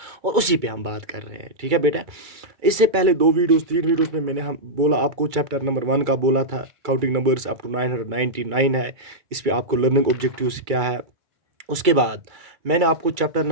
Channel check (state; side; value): late; left; 2.3 ms